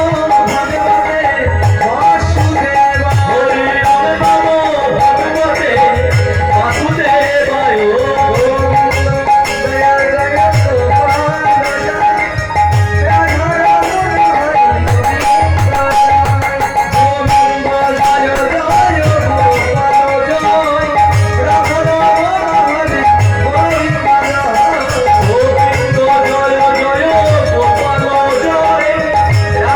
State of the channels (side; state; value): both; identical; correlation 1.00